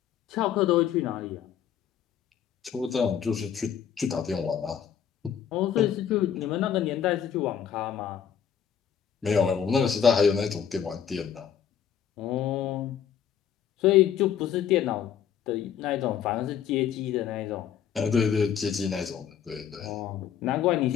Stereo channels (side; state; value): right; quieter; 8.6 dB